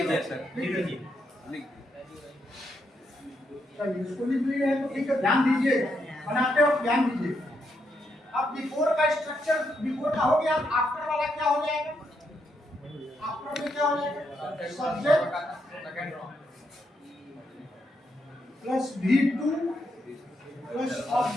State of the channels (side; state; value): both; normal; correlation 0.79